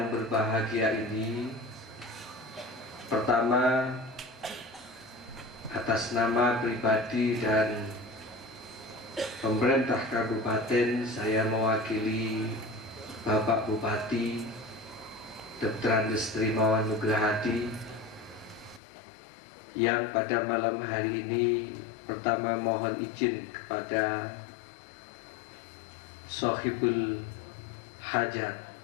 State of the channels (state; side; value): drops out; right; at 18.8 s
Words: berbahagia ini, pertama atas nama pribadi dan pemerintah kabupaten, saya mewakili Bapak Bupati Dr. Andes Trimawan Nugrahadi yang pada malam hari ini pertama mohon izin kepada Sohibul Hajat